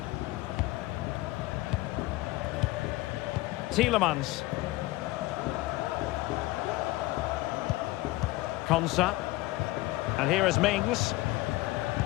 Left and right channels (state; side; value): quieter; right; 19.3 dB